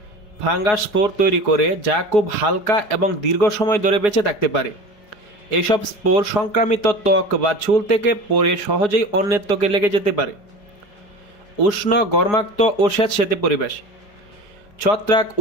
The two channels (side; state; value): right; late; 4.8 ms